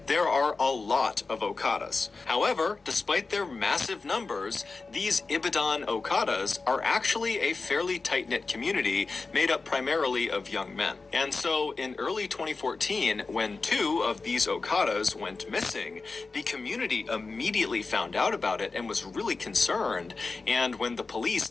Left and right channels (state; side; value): quieter; right; 4.0 dB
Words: there are a lot of Okadas. However, despite their massive numbers, these Ibadan Okadas are actually a fairly tight-knit community made up primarily of young men. And so, in early 2014, when 2 of these Okadas went missing, the community immediately found out about it and was really concerned. And when the police